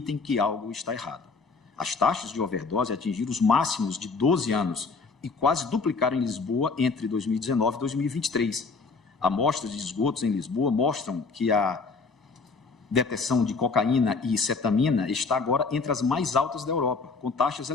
que algo está errado. As taxas de overdose atingiram os máximos de 12 anos e quase duplicaram em Lisboa entre 2019 e 2023. Amostras de esgotos em Lisboa mostram que a detecção de cocaína e cetamina está agora entre as mais altas da Europa, com taxas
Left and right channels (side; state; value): right; quieter; 4.4 dB